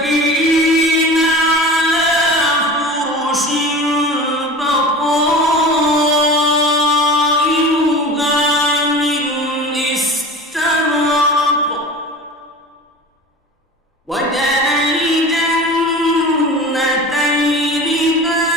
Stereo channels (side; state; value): both; normal; correlation 0.35